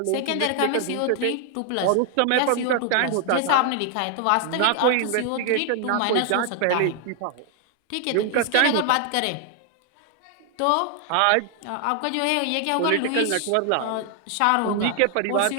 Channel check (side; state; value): both; different; correlation 0.00